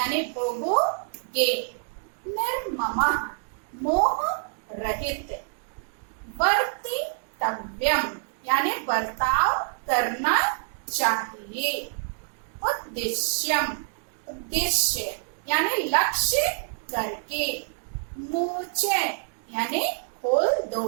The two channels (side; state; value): left; silent; digital silence